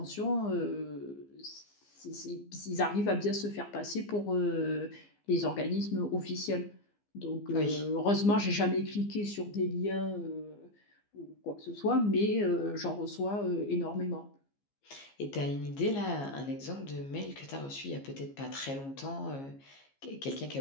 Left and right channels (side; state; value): right; late; 15 ms